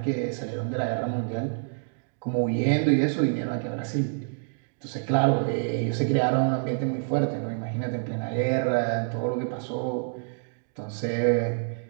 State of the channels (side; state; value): left; silent; digital silence